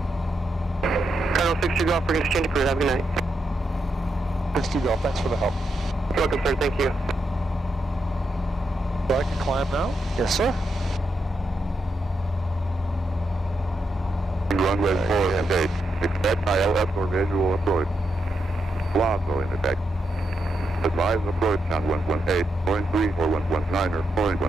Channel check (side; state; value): both; normal; correlation 0.83